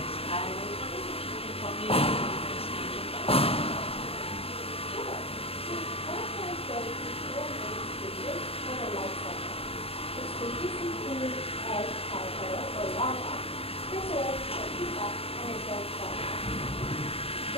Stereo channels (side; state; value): right; late; 0.28 ms